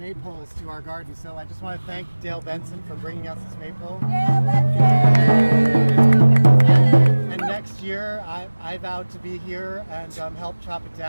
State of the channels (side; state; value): both; inverted; correlation -1.00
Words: to our garden. So I just want to thank Dale Benson for bringing us this maypole. And next year I vowed to be here and help chop it